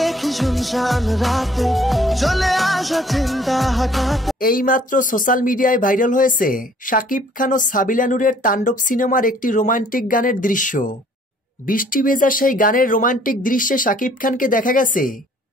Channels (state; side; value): normal; both; correlation 0.58